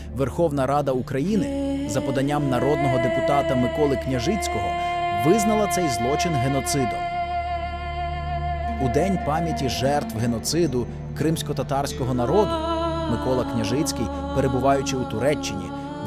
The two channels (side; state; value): both; identical; correlation 1.00